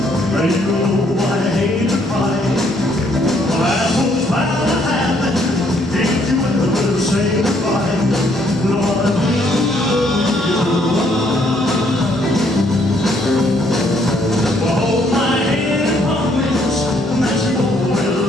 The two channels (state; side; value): normal; both; correlation 0.68